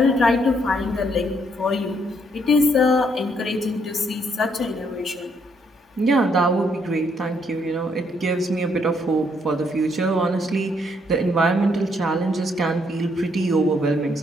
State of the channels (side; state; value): both; normal; correlation 0.71